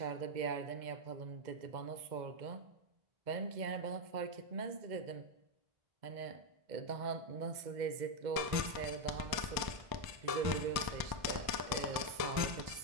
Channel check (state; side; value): late; left; 1.0 ms